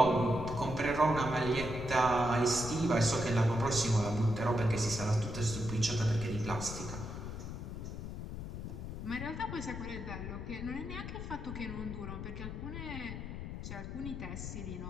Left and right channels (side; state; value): left; noise; rumble, 7 dB below the sound